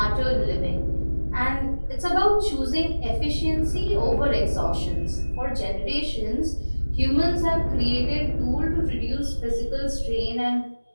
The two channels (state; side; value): inverted; both; correlation -1.00